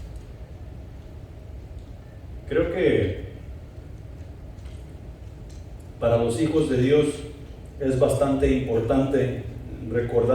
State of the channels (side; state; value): both; identical; correlation 1.00